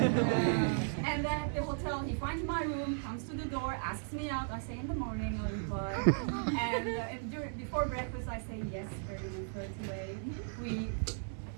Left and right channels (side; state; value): left; silent; digital silence